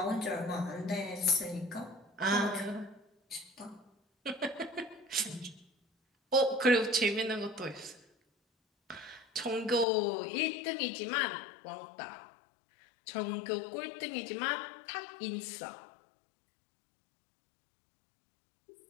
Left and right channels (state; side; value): drops out; right; at 9.9 s